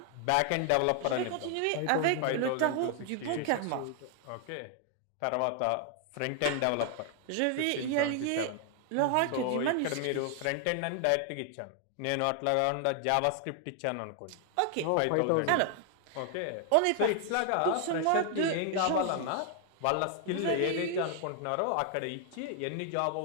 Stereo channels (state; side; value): different; both; correlation 0.00